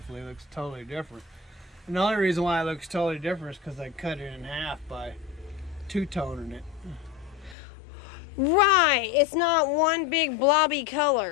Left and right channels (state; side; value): drops out; right; at 7.6 s